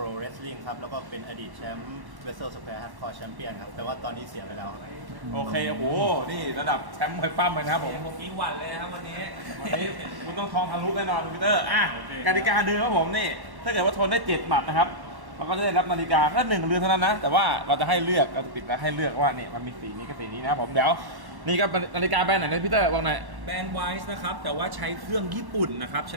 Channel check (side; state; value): left; late; 1.1 ms